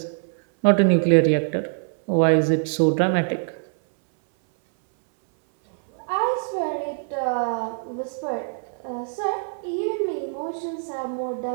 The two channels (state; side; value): silent; left; 61 dB below the other